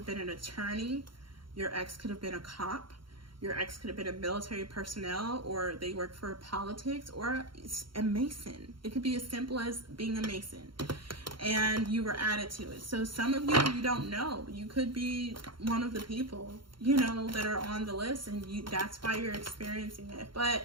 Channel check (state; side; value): late; left; 0.73 ms